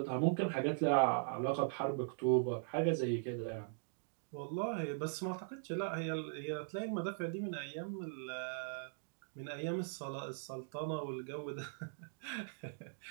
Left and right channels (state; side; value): silent; left; digital silence